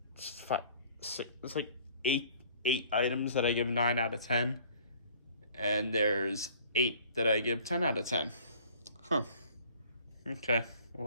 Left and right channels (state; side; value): inverted; both; correlation -0.53